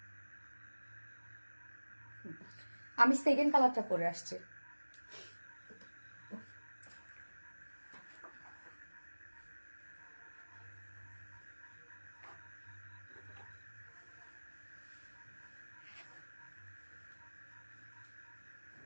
আমি সেকেন্ড কালারটা পরে আসছি।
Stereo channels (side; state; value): both; inverted; correlation -1.00